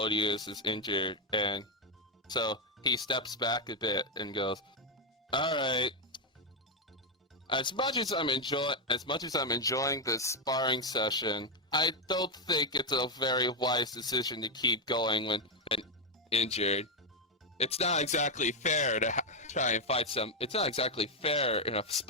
is injured, and so he steps back a bit and goes, "All right. As much as I'm enjoying this sparring session, I don't think it's a very wise decision to keep going when injured. It's not exactly fair to try and fight some. It's not exactly fair in a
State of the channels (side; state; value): both; normal; correlation 0.04